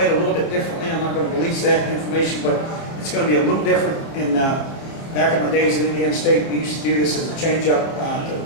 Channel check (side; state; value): right; late; 29 ms